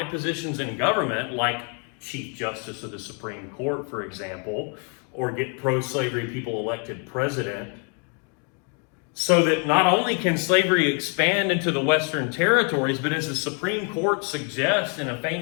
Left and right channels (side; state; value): right; quieter; 38.3 dB